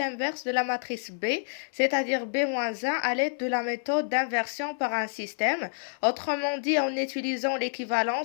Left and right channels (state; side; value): silent; right; 59 dB below the other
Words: de la matrice B, c'est-à-dire B-1 à l'aide de la méthode d'inversion par un système. Autrement dit, en utilisant